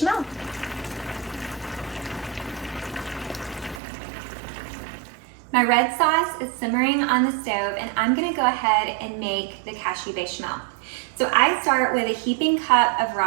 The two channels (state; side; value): drops out; left; at 3.8 s